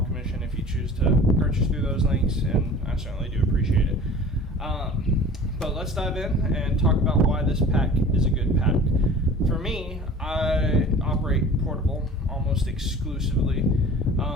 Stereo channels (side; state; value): both; normal; correlation 0.43